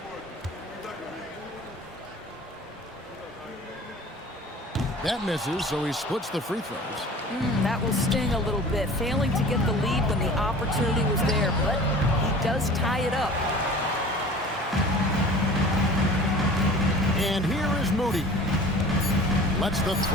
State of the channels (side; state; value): both; normal; correlation 0.43